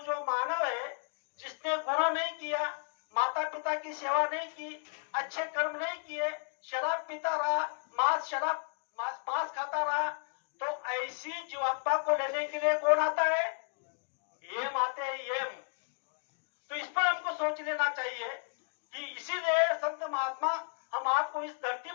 मानव है, जिसने गुरु नहीं किया, माता पिता की सेवा नहीं की, अच्छे कर्म नहीं किए, शराब पीता रहा, मांस खाता रहा, तो ऐसी जीवात्मा को लेने के लिए कौन आता है? यम आते हैं, यम। तो इस पर हमको सोच लेना चाहिए कि इसीलिए संत महात्मा हम आपको इस धरती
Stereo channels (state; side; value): silent; right; 56 dB below the other